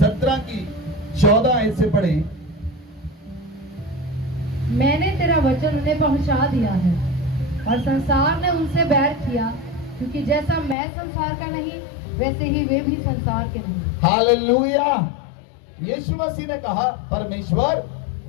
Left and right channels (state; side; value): drops out; right; at 10.8 s